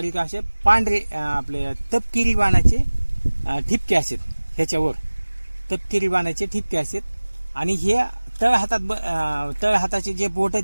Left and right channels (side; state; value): both; inverted; correlation -1.00